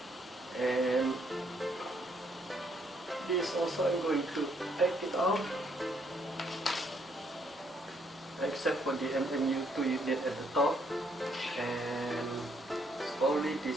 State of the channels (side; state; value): both; normal; correlation 0.70